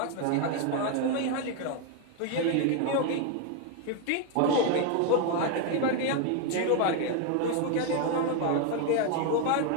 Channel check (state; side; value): different; both; correlation 0.01